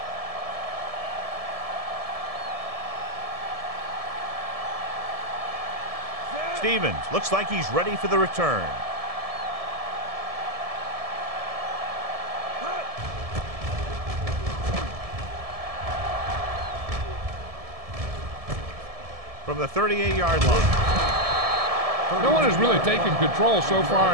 Stevens looks like he's ready for the return. From the 38-yard line. No one has really taken control so far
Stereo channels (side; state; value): left; late; 1.7 ms